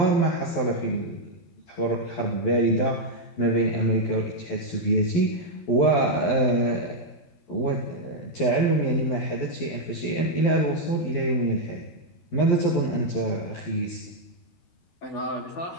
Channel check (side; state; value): right; late; 11 ms